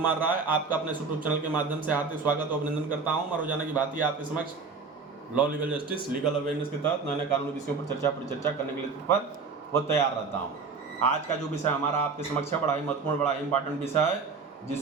राय आपका अपने यूट्यूब चैनल के माध्यम से हार्दिक स्वागत और अभिनंदन करता हूं। मैं रोजाना की भांति आपके समक्ष law legal justice legal awareness के तहत नए नए कानूनी विषयों पर परिचर्चा करने के लिए तत्पर व तैयार रहता हूं। आज का जो विषय हमारा आपके समक्ष है बड़ा ही महत्वपूर्ण, बड़ा ही इंपॉर्टेंट विषय है,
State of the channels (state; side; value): quieter; left; 4.9 dB